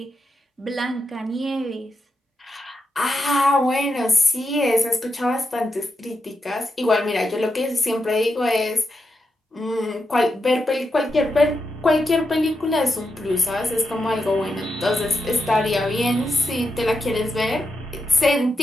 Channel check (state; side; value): normal; both; correlation 0.86